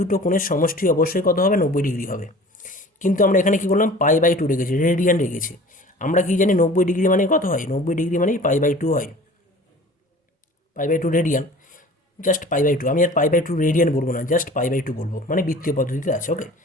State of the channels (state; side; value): normal; both; correlation 0.44